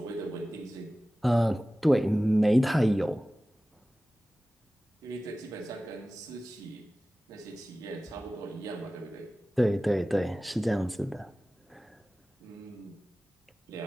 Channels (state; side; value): normal; both; correlation 0.97